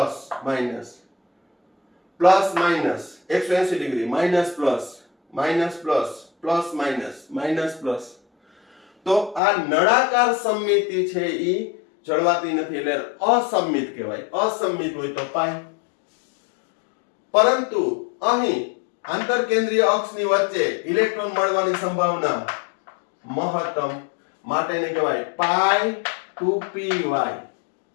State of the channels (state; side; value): drops out; right; at 9.4 s